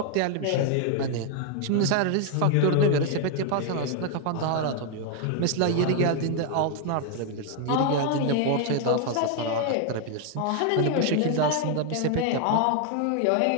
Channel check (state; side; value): different; both; correlation 0.00